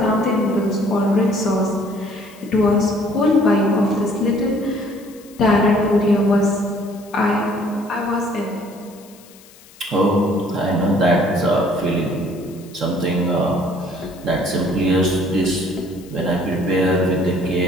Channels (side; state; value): left; noise; hiss, 24 dB below the sound